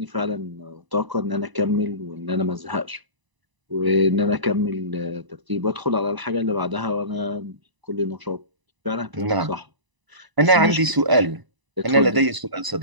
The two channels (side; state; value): left; late; 1.0 ms